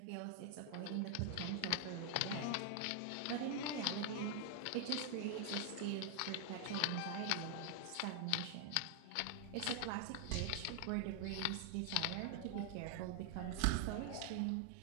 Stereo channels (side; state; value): both; different; correlation 0.00